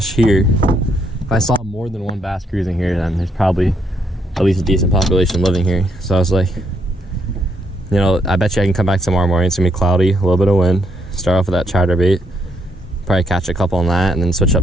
here. If I saw more than 1 bass cruising here, then there's probably at least a decent population living here. So I was like, I bet you I can come back tomorrow morning. It's gonna be cloudy, a little bit of wind. Start off with that chatterbait, probably catch a couple on that, and then switch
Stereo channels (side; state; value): both; normal; correlation 0.74